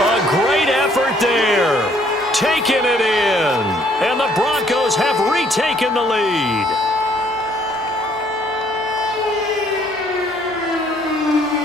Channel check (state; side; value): noise; left; hum, 28 dB below the sound